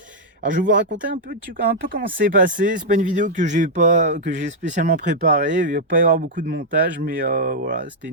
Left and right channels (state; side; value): normal; both; correlation -0.05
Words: Alors je vais vous raconter un peu comment c'est passé, c'est pas une vidéo que j'ai spécialement préparée, il va pas y avoir beaucoup de montage, mais voilà, c'était